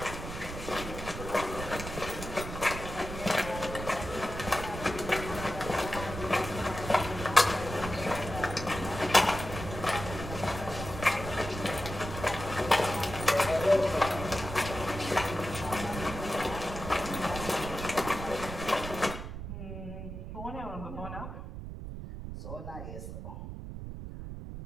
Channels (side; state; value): right; noise; rumble, 8 dB below the sound